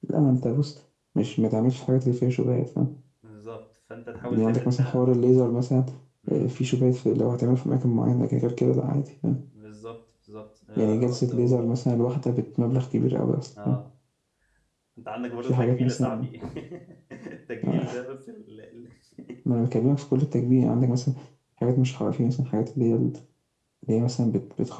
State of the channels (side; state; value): both; identical; correlation 1.00